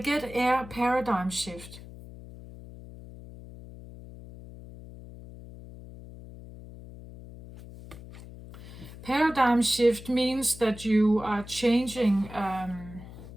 air paradigm shift. Paradigm shift means that you are changing,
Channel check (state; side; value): noise; left; hum, 16 dB below the sound